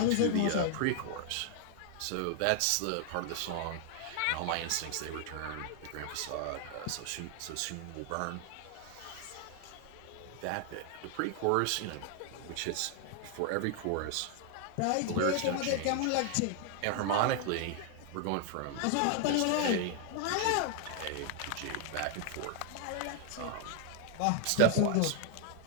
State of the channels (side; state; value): both; different; correlation 0.00